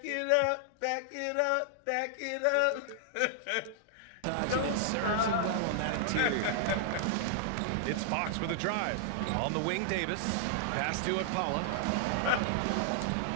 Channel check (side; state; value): both; different; correlation -0.01